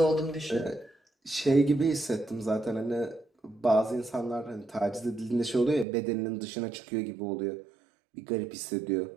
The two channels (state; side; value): drops out; left; at 5.9 s